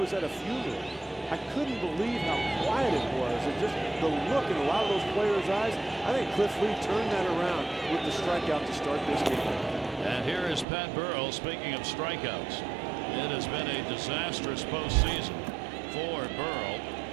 at a funeral. I couldn't believe how quiet it was, and just the look in a lot of those players' eyes. I think Cliff Lee turned that around with the strikeout to start this game. And here is Pat Burrell. Speaking of strikeouts, it has been a disastrous postseason for Burrell.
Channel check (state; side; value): drops out; left; at 10.7 s